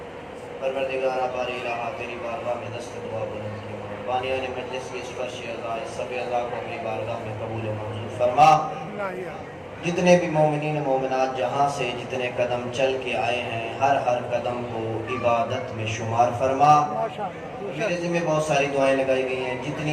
پروردگارہ باری الہ تیری بارگاہ میں دست دعا بلند کی، بانیان مجلس کی سفرش اعضاء سب اعضاء کو اپنی بارگاہ میں قبول و منظور فرما۔ جتنے بھی مومنین و مومنات جہاں سے جتنے قدم چل کے آئے ہیں، ہر قدم کو عبادت میں شمار فرما۔ میرے ذمہ بہت ساری دعائیں لگائی گئی ہیں،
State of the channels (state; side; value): identical; both; correlation 1.00